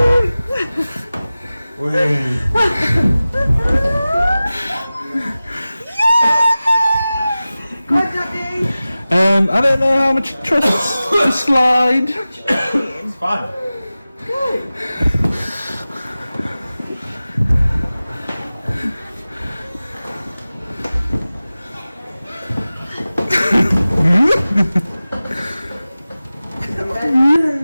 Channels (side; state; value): both; inverted; correlation -0.97